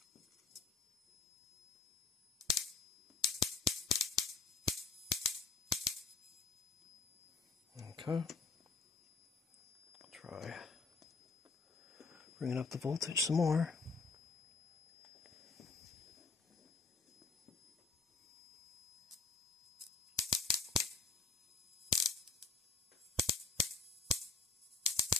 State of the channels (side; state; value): right; quieter; 5.2 dB